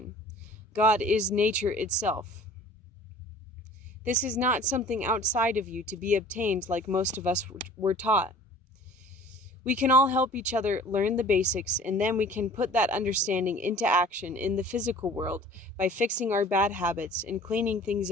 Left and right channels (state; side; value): normal; both; correlation 0.47